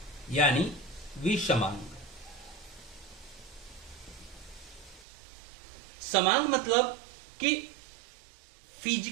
यानी विषमांग। समांग मतलब कि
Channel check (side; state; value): left; drops out; at 5.1 s